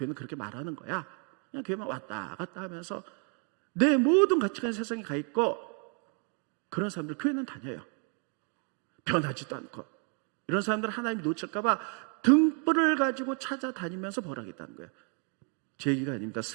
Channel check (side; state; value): left; quieter; 39.5 dB